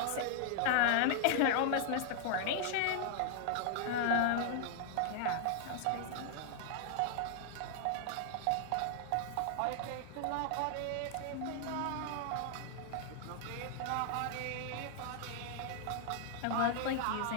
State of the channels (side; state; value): both; different; correlation -0.01